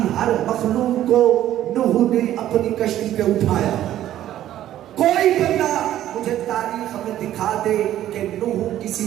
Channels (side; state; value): left; quieter; 12.5 dB